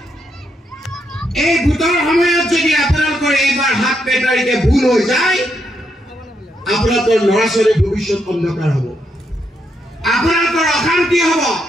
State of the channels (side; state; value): both; normal; correlation 0.80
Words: এই ভোটৰ সময়ত যদি আপোনালোকৰ এইবাৰ 7 মে তাৰিখে ভুল হৈ যায় আপোনালোকৰ ল'ৰা ছোৱালীৰ ভৱিষ্যত অন্ধকাৰ হ'ব আপোনালোকৰ অশান্তি হ'ব